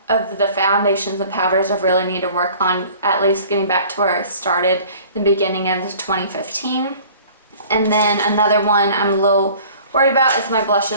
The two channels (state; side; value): inverted; both; correlation -0.48